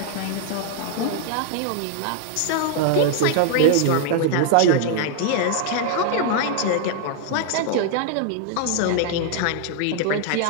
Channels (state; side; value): different; both; correlation 0.00